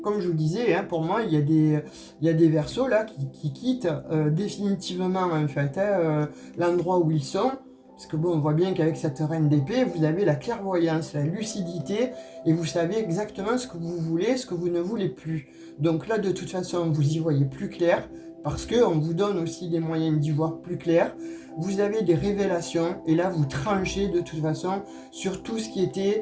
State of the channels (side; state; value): both; identical; correlation 1.00